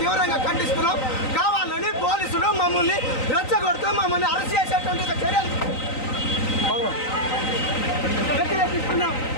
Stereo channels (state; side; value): late; right; 3.9 ms